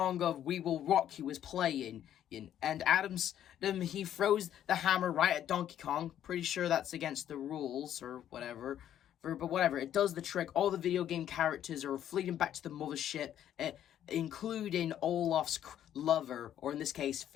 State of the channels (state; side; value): quieter; right; 10.8 dB